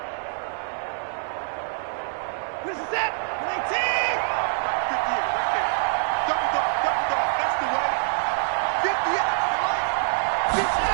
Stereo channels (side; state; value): left; silent; digital silence